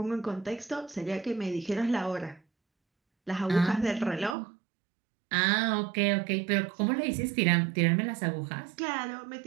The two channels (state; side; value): drops out; left; at 4.4 s